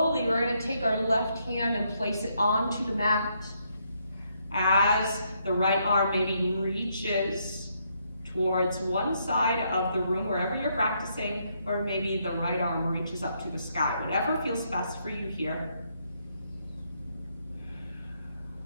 we're going to take our left hand and place it onto the mat as the right arm maybe reaches towards one side of the room, wherever you're practicing, or maybe the right arm reaches up to the sky. Whatever feels best for you here.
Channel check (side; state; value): both; inverted; correlation -0.75